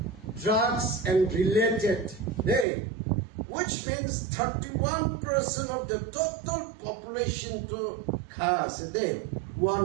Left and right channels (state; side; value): drops out; left; at 2.7 s